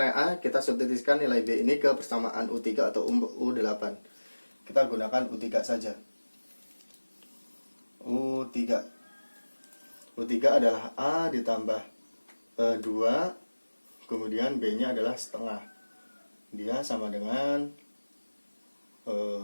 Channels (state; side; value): inverted; both; correlation -1.00